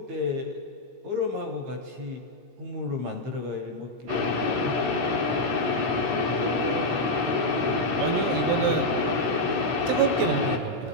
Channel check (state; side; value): late; left; 17 ms